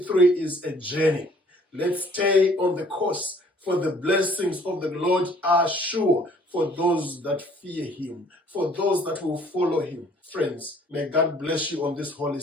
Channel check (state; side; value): normal; both; correlation 0.57